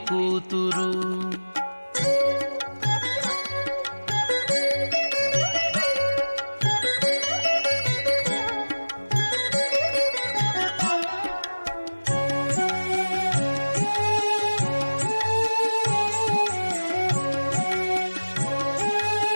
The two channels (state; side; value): inverted; both; correlation -1.00